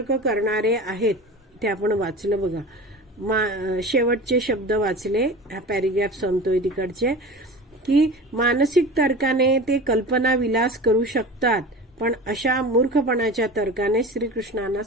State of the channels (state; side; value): normal; both; correlation 0.34